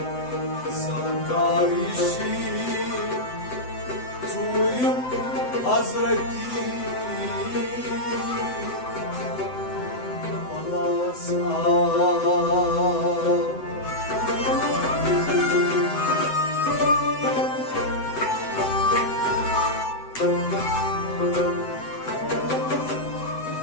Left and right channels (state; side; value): late; right; 7.9 ms